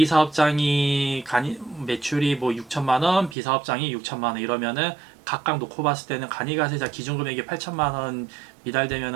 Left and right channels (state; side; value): drops out; left; at 3.4 s